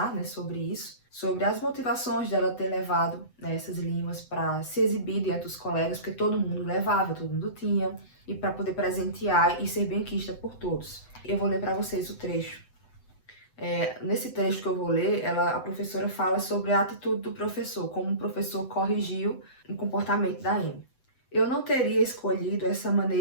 né, sobre isso, sobre as motivações dela ter levado, né, essas limas para se exibir diante dos colegas, porque todo mundo levava, todo mundo tinha, e para poder presentear e ser benquista por todos. Eu vou ler para vocês o trecho. Nesse trecho que eu vou ler, a professora fala sobre a atitude do professor, como o professor corrigiu o comportamento da Amy. Eu não teria escolhido essa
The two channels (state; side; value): late; right; 7.9 ms